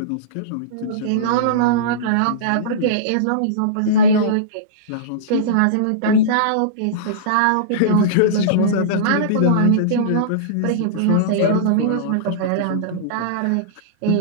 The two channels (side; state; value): both; different; correlation -0.04